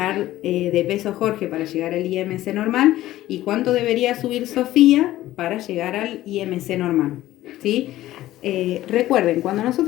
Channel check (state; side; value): quieter; right; 15.0 dB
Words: de peso Jorge para llegar al IMC normal? ¿Y cuánto debería subir Sofía para llegar al IMC normal? ¿Sí? Recuerden, cuando